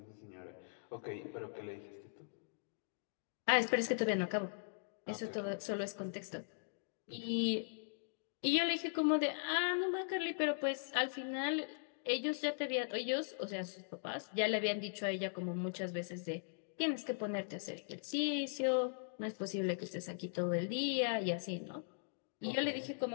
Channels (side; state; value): right; silent; digital silence